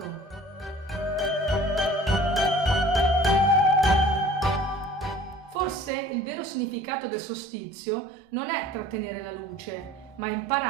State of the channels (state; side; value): normal; both; correlation 0.48